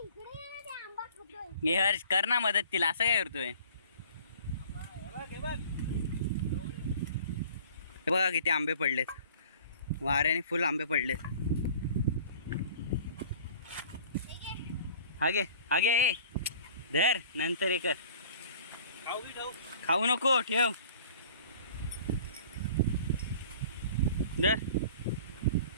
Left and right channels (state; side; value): inverted; both; correlation -0.48